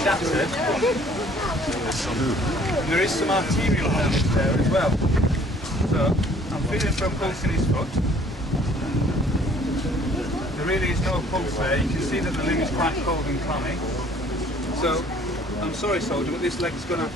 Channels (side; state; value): both; normal; correlation 0.57